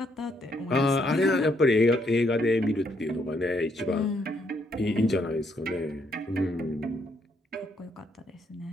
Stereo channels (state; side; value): normal; both; correlation 0.73